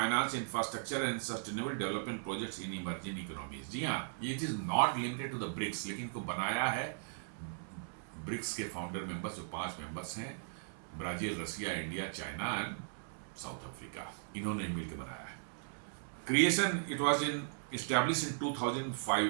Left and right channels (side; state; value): left; silent; 53 dB below the other